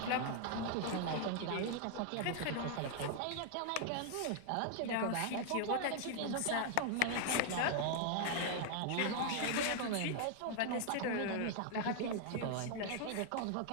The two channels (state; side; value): different; both; correlation 0.00